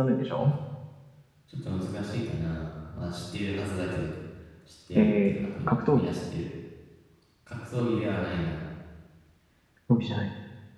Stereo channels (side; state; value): both; identical; correlation 1.00